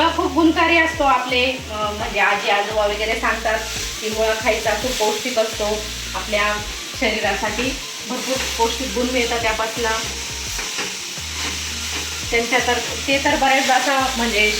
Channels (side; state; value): both; identical; correlation 1.00